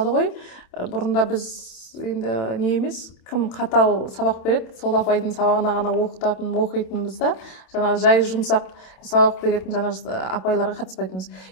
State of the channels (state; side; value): late; right; 27 ms